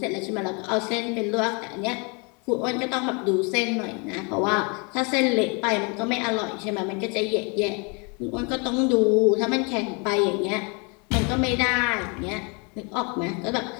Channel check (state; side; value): quieter; right; 32.7 dB